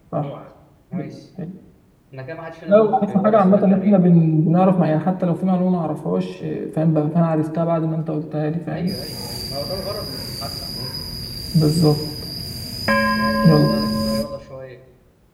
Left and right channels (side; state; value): both; identical; correlation 1.00